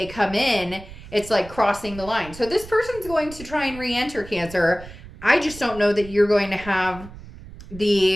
come in, it's like crossing the line. So this person's going to try and re-enter, Cancer. I just don't know that you're going to have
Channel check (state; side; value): noise; right; rumble, 16 dB below the sound